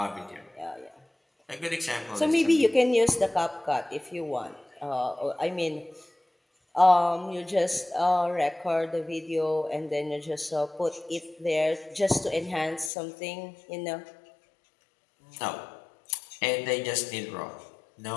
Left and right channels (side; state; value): right; drops out; at 12.9 s